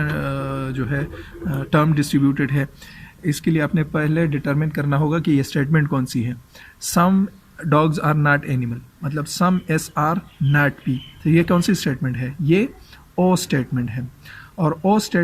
जो है टर्म डिस्ट्रीब्यूटेड है, इसके लिए आपने पहले डिटरमिन करना होगा कि ये स्टेटमेंट कौन सी है। Some dogs are not animal, मतलब some S are not P, तो ये कौन सी स्टेटमेंट है? ये ओ स्टेटमेंट है। और ओ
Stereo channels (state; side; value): identical; both; correlation 1.00